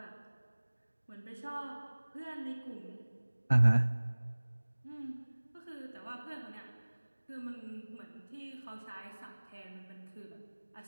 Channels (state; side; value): inverted; both; correlation -1.00